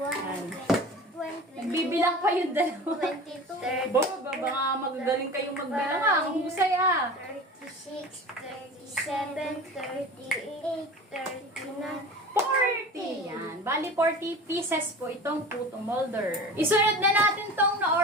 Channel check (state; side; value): normal; both; correlation 0.35